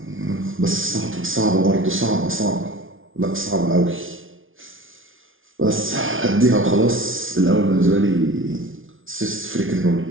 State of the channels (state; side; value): late; left; 0.58 ms